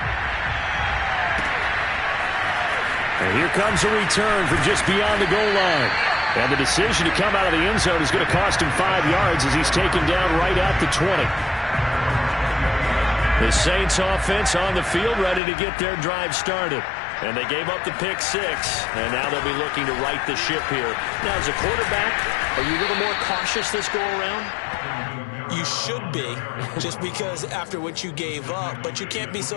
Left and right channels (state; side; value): drops out; right; at 15.4 s